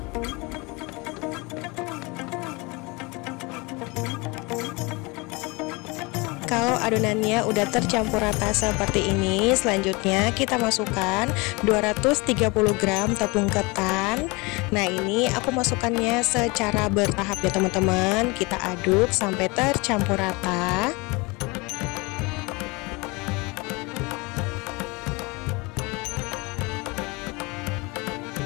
Kalau adonannya udah tercampur rata seperti ini, selanjutnya kita masukkan 230 gram tepung ketan. Nah, ini aku masukkannya secara bertahap ya teman-teman. Kita aduk sampai tercampur rata.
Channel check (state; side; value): quieter; right; 26.3 dB